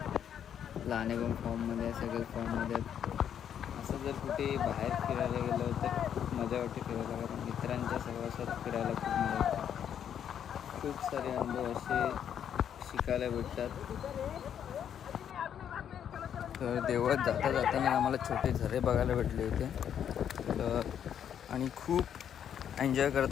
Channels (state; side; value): quieter; right; 9.0 dB